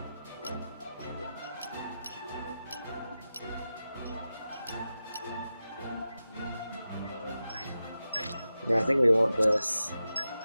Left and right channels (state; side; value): inverted; both; correlation -0.92